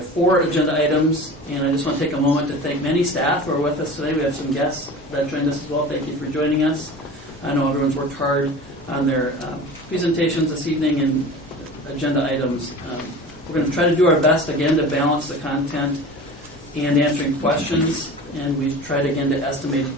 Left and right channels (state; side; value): normal; both; correlation 0.37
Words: 4 agenda items, and I just want to take a moment to thank many staff who are with us today. We have some guests that joined us as well. Thank you for joining us. I know everyone's worked hard on their presentations this evening and agenda items. We're going to try to do our best, again, to balance the content and answering questions, and we tried, again, to estimate